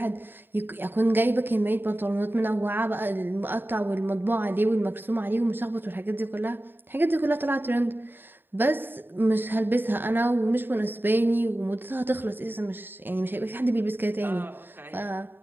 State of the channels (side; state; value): left; late; 0.096 ms